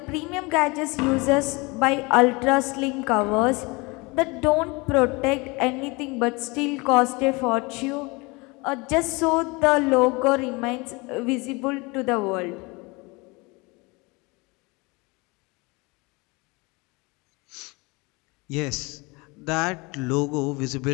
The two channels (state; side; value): quieter; right; 26.2 dB